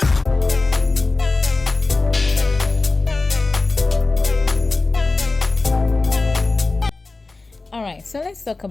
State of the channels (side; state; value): right; quieter; 3.5 dB